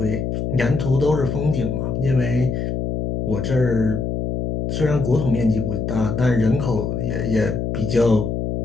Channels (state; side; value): noise; left; hum, 2 dB below the sound